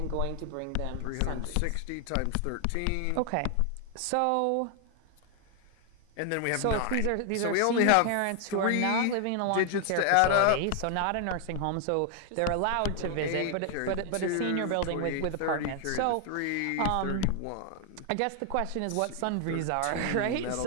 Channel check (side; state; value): both; different; correlation 0.00